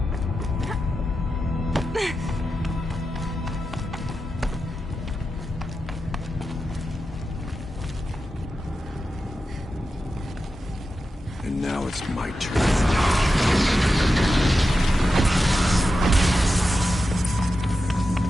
it's my turn.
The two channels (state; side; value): normal; both; correlation 0.90